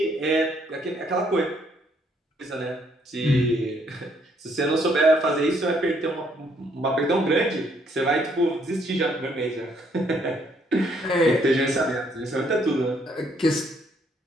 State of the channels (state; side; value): normal; both; correlation 0.68